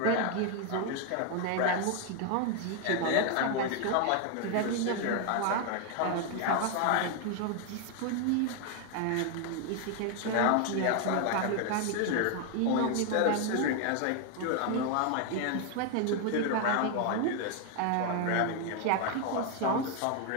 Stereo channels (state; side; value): different; both; correlation 0.01